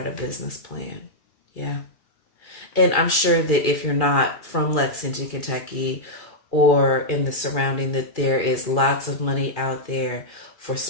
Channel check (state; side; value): late; right; 2.4 ms